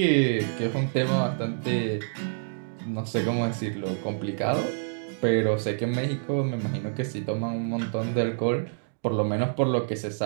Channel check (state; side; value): silent; left; digital silence